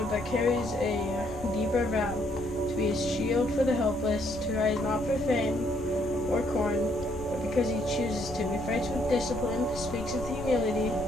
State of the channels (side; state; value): both; normal; correlation 0.70